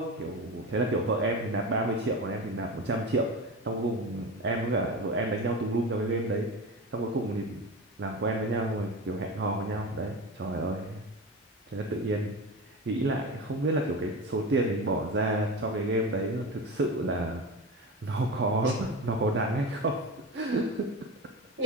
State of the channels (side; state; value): both; normal; correlation 0.26